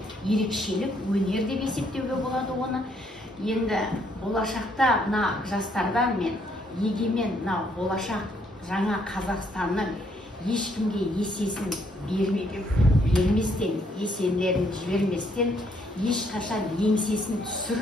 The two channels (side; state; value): both; normal; correlation 0.70